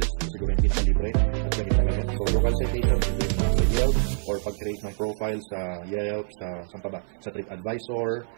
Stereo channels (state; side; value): silent; left; digital silence